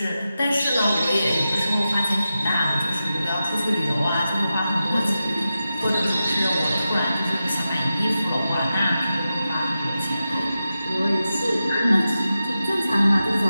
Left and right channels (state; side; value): inverted; both; correlation -0.91